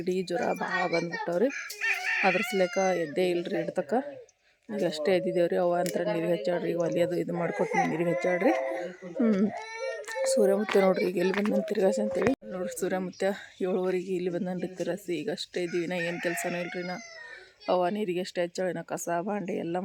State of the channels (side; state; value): both; identical; correlation 1.00